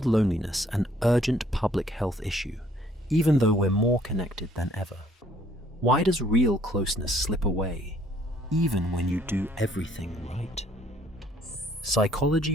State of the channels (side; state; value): both; normal; correlation 0.63